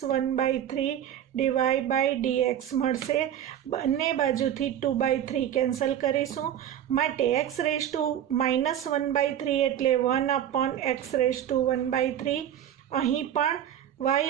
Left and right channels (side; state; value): left; quieter; 10.5 dB